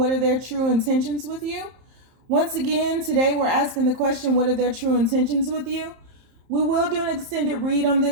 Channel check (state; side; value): late; left; 30 ms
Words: are their true intentions with you? Once again, today we're asking the question, what are their true intentions with you? We will do an extended read on